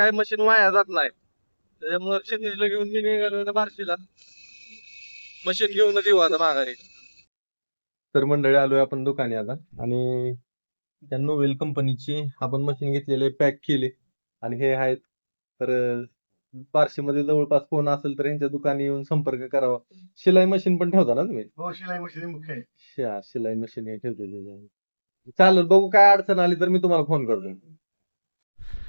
मशीन वाया जात नाही. त्याच्यामुळे क्षितिजला घेऊन मी निघालो बार्शीला, मशीन घेऊनच येऊ आता माघारी. तर मंडळी आलोय आपण दुकानी आता, आणि त्या नोवेल कंपनीची आपण मशीन घेतलेले, पॅक केले, आणि हे आहेत. तर बार्शीमध्ये जवळपास कोण असेल तर यांच्या दुकानी येऊन संपर्क करावा. शिलाई मशीन पण ठेवता ना तुम्ही? हो, शिलाई मशीन मुख्य आहे. शिलाई मशीन हे ठेवलेली आहे. चालेल, बघू काय अडचण आली तर मी तुम्हाला फोन करतो.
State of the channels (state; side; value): inverted; both; correlation -1.00